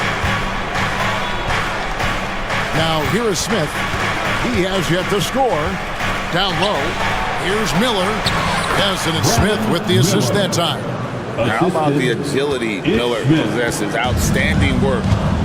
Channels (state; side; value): identical; both; correlation 1.00